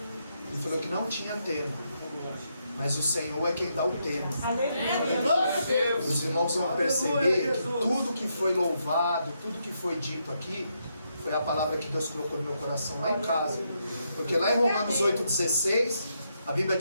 Ele falou que não tinha tema, mas o Senhor é quem dá o tema. Os irmãos vão perceber que tudo que foi louvado, tudo que foi dito aqui, foi a palavra que Deus colocou no meu coração lá em casa. Porque lá em Romanos 8,16, a Bíblia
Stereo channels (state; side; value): inverted; both; correlation -0.79